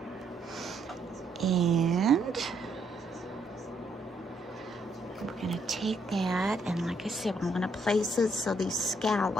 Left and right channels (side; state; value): both; normal; correlation 0.72